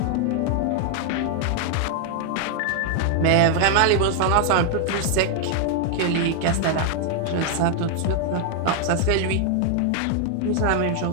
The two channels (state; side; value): different; both; correlation 0.00